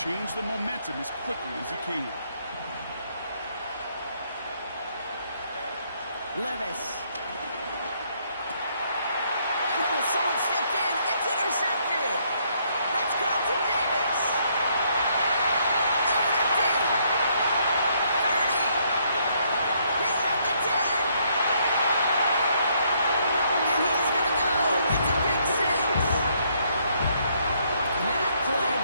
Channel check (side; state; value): both; inverted; correlation -0.70